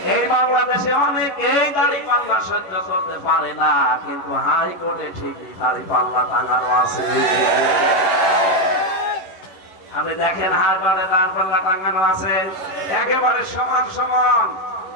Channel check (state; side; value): late; right; 11 ms